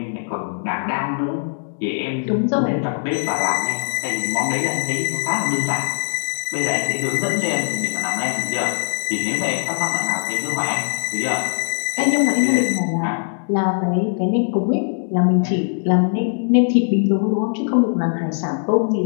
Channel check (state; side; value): silent; right; digital silence